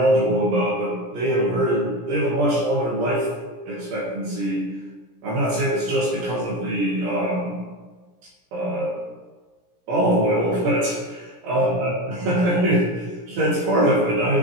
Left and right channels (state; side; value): late; left; 17 ms